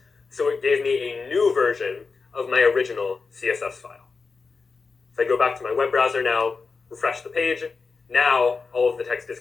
so it gave me a new version of my original CSS file. If I go back to my web browser now, refresh the page, now all of the text is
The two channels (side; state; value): right; quieter; 4.6 dB